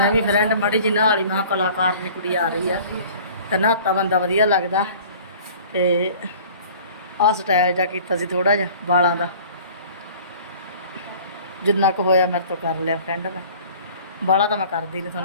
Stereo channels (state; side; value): inverted; both; correlation -0.47